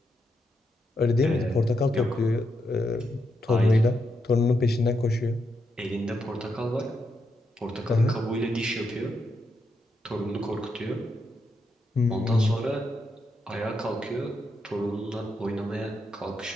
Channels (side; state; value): both; normal; correlation 0.82